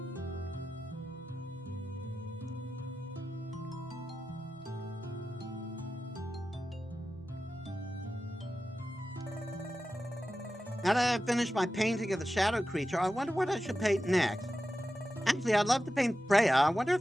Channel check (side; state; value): both; normal; correlation 0.92